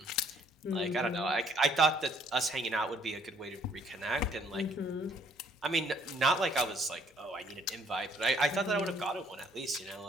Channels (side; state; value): both; normal; correlation 0.63